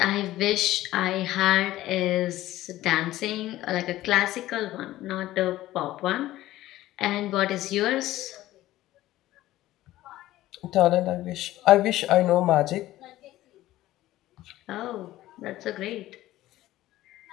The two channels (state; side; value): quieter; right; 15.5 dB